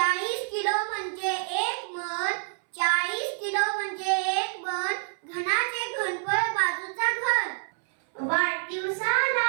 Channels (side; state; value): left; silent; 60 dB below the other